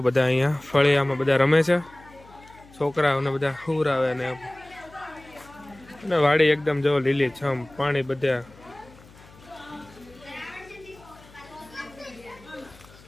બધા અહીંયા ફળિયામાં બધા રમે છે, છોકરાઓને બધા હુરાવે અને વાડી એકદમ જો લીલી છમ, પાણી બધા.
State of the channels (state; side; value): noise; left; hum, 23 dB below the sound